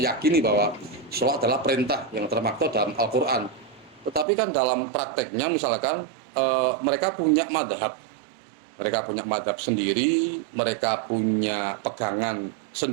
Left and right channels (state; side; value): drops out; left; at 4.2 s